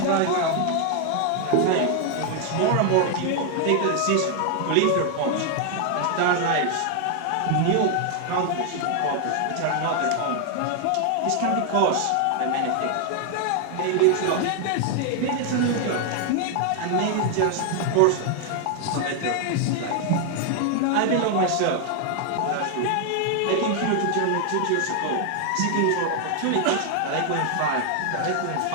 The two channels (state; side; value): different; both; correlation 0.00